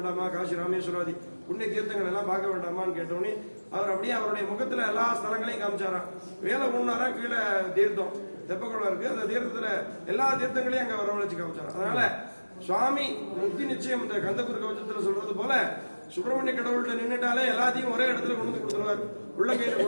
காசி ராமேஸ்வராதி புண்ணிய தீர்த்தங்கள் எல்லாம் பார்க்க வேண்டாமான்னு கேட்டோன்னே அவர் அப்படியே அவருடைய முகத்துல எல்லா ஸ்தலங்களையும் காமிச்சாராம். வேலை ஒண்ணாரா கீழே தீர்த்தம் தெப்பக்குளம் இருக்கு, அந்த தீர்த்தத்துல எல்லா தீர்த்தங்களையும் அங்க வரவழைச்சு காமிச்சாராம். அதனால சுவாமி முக்தி நிச்சயம் இந்த கந்தகுரு கவச்சத்துல சொல்றது போல சுப்பிரமணிய கடவுள்கிட்ட நின்றுட்டாலே எல்லாத்தையும் ஒரே இடத்துல கொண்டு கொடுத்துருவார், உள்ள கையில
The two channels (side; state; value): both; inverted; correlation -1.00